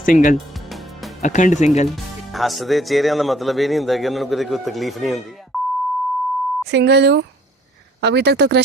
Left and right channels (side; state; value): both; normal; correlation 0.58